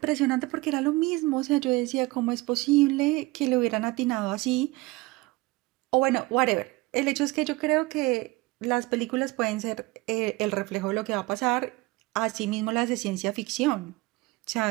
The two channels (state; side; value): quieter; left; 22.0 dB